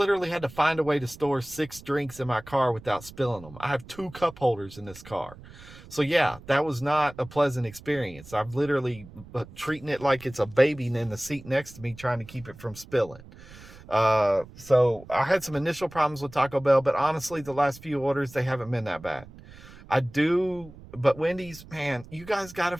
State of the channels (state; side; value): noise; right; rumble, 19 dB below the sound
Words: had to find a way to store 6 drinks in my car without spilling them. I have 2 cup holders in this car. So yeah, that was not a pleasant experience. I'm literally treating it like it's a baby in the seat next to me, trying to keep it from spilling. So I had some initial problems with Taco Bell, but honestly, the last few orders, they haven't been that bad. But Wendy's, man, you guys got to